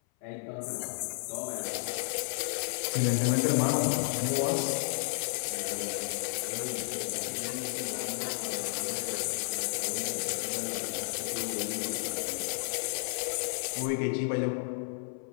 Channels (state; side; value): silent; right; 56 dB below the other